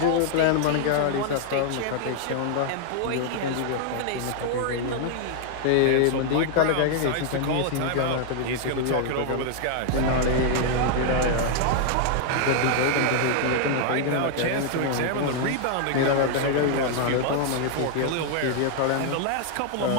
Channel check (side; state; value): both; different; correlation 0.00